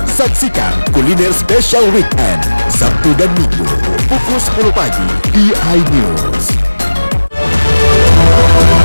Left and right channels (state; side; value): inverted; both; correlation -1.00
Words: Saksikan kuliner spesial weekend Sabtu dan Minggu pukul 10 pagi di iNews.